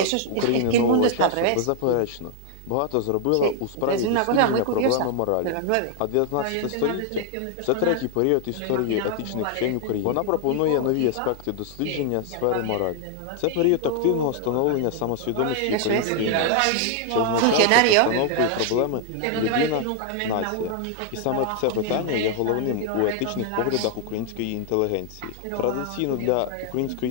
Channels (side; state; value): both; different; correlation 0.00